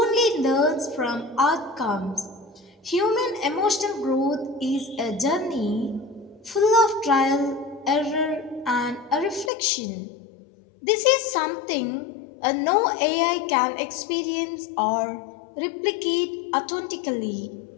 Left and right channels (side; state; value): right; drops out; at 9.5 s